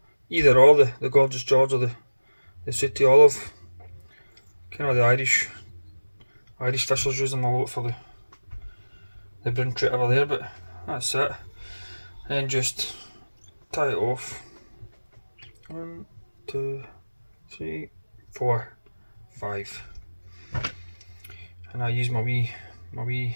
Either or, the Gorgeous George or the Sooty Olive. Kind of the Irish fishers use them a lot for the brown trout over there, but that's it. And just tie it off. 1, 2, 3, 4, 5. And I use my wee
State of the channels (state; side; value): inverted; both; correlation -1.00